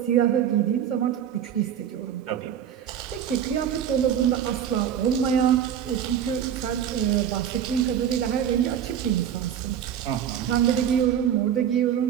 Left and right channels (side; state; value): left; quieter; 9.3 dB